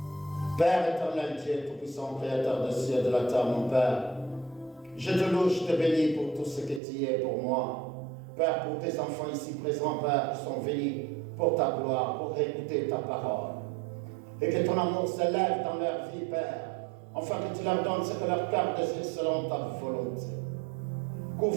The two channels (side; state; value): left; drops out; at 6.8 s